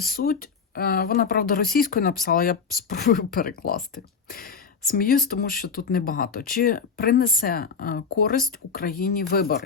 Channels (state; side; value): quieter; right; 5.6 dB